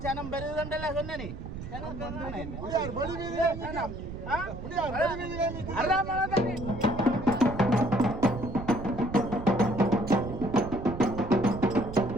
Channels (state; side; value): noise; right; rumble, 9 dB below the sound